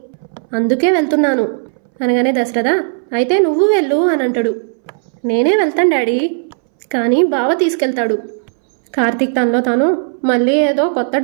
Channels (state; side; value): silent; left; 66 dB below the other